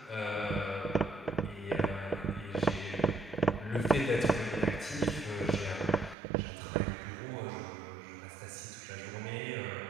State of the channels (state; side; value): drops out; left; at 6.2 s